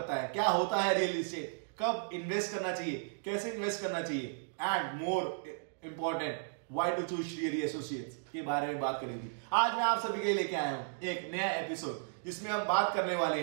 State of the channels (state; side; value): silent; left; digital silence